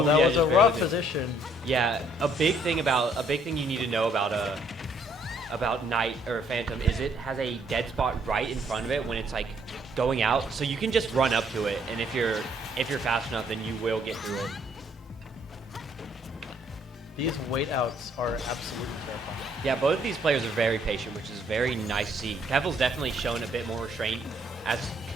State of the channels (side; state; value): both; normal; correlation 0.66